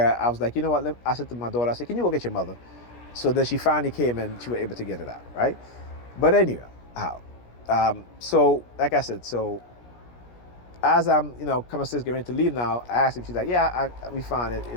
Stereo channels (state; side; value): late; right; 17 ms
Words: I was like, what? I said to my daughter, I said, "Can you go get your mother?" So then she finally came and she was able to get it out, right? But anyway, so like I said, so as I'm, coming upstairs getting ready to leave now, I asked her. She's like, "Yeah, we found it.